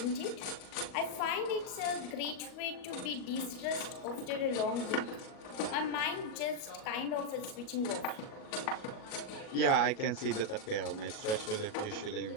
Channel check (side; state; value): right; late; 37 ms